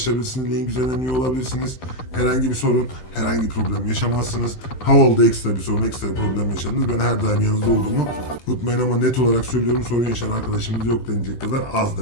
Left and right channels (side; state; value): right; late; 15 ms